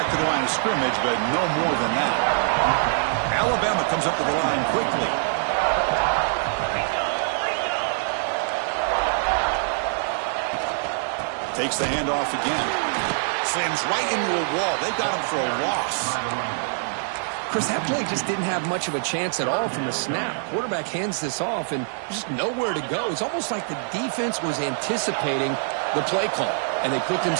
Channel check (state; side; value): silent; left; digital silence